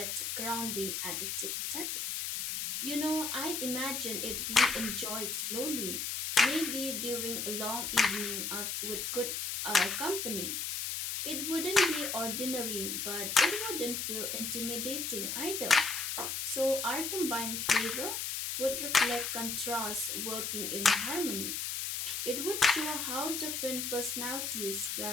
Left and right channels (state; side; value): noise; left; hiss, 2 dB below the sound